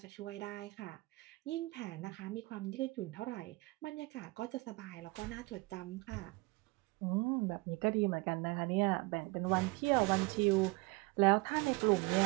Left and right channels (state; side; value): quieter; left; 24.7 dB